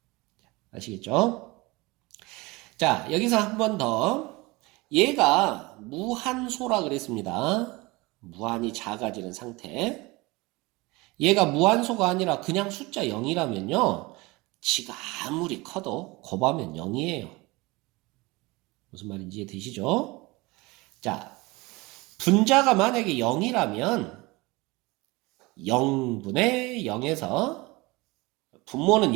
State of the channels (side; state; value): left; quieter; 23.3 dB